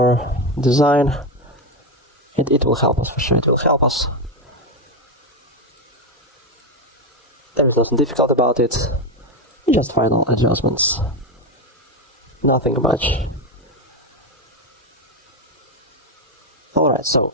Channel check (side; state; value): both; normal; correlation 0.10